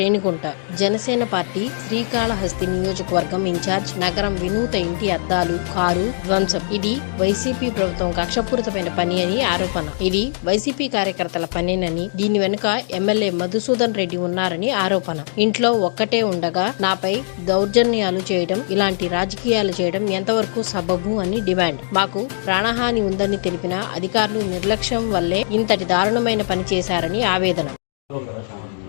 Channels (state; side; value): silent; right; digital silence